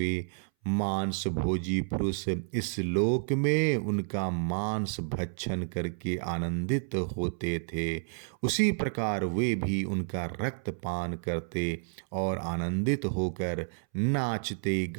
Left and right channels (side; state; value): left; silent; 58 dB below the other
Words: मांस भोजी पुरुष इस लोक में उनका मांस भक्षण करके आनंदित होते थे, उसी प्रकार वे भी उनका रक्त पान करते और आनंदित होकर नाचते